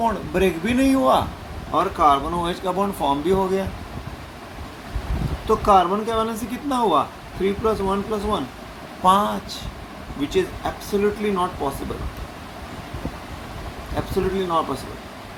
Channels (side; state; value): both; identical; correlation 1.00